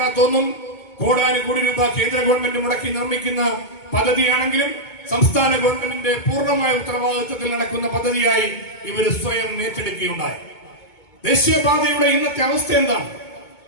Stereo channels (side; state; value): right; late; 2.2 ms